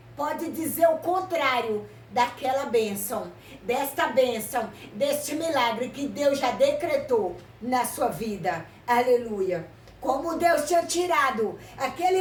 pode dizer o contrário daquela bênção. Desta bênção, deste milagre que Deus já decretou na sua vida. Aleluia. Como Deus tinha tirado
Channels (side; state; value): both; identical; correlation 1.00